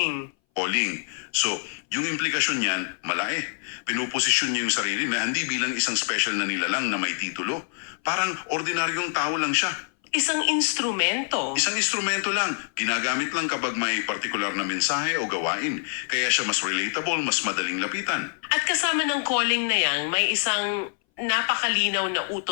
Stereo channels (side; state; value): right; silent; 59 dB below the other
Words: Calling. So, yung implikasyon niyan, malaki. Pinuposisyon niya yung sarili na hindi bilang isang special na nilalang na may titulo. Parang ordinaryong tao lang siya. Isang instrumento. Isang instrumento lang. Ginagamit lang kapag may partikular na mensahe o gawain. Kaya siya mas relatable, mas madaling lapitan. At kasama ng calling na yan, may isang napakalinaw na